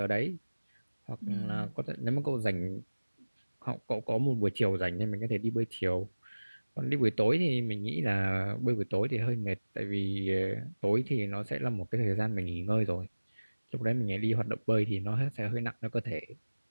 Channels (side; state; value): both; inverted; correlation -1.00